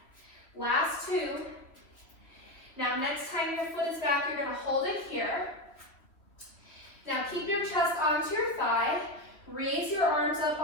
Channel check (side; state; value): right; late; 2.9 ms